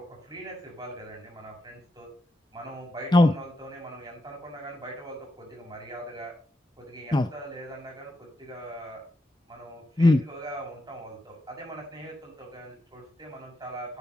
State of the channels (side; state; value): both; normal; correlation 0.84